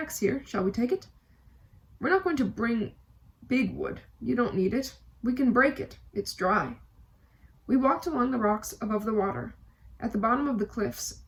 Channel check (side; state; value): both; identical; correlation 1.00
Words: here. Shall we take it?" "We're not going to bring big wood. You don't need it. We can break it. It's dry." We walked along the rocks above the water. At the bottom of the cliffs,